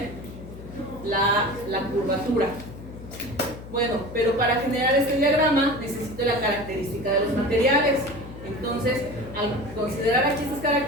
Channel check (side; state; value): left; noise; hum, 14 dB below the sound